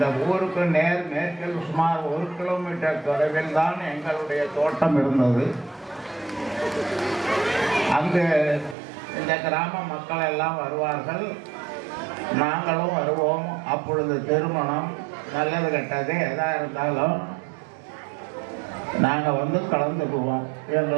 ஊருக்கு நேர் மேற்கில் சுமார் 1 கிலோமீட்டர் தொலைவில் தான் எங்களுடைய தோட்டம் இருந்தது. அங்கு இந்த கிராம மக்கள் எல்லாம் வருவார்கள், நாங்களும் வருவோம். அப்பொழுது திருமணம், நல்லது கெட்டது எதாக இருந்தாலும் நாங்கள் வந்து கலந்துக்குவோம்.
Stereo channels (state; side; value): drops out; left; at 8.8 s